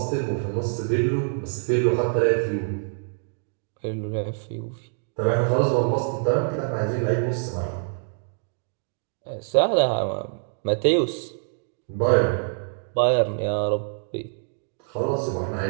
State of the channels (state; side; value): silent; left; digital silence